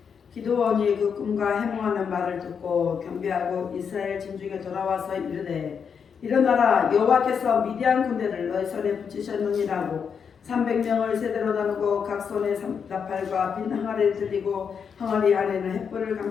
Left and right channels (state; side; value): quieter; right; 6.7 dB